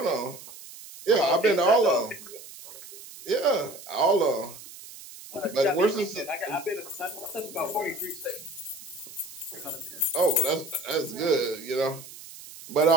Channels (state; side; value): noise; right; hiss, 16 dB below the sound